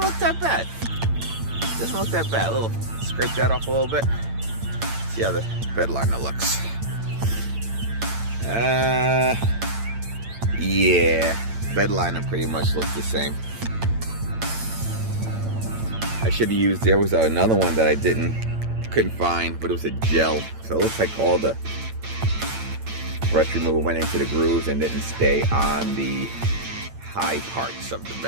that bad. It doesn't look that bad. A little, scrape that off a little bit. See how the Bedliner looks. Yeah, Bedliner pretty much looks the same. I should have used, there was another one that I couldn't find, but it was a gel. So it looks like all the rust remover went into the grooves and didn't stay on the high parts of the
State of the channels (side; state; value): left; late; 8.9 ms